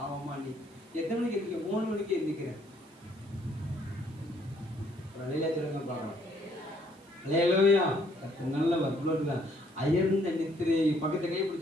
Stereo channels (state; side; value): noise; right; hiss, 29 dB below the sound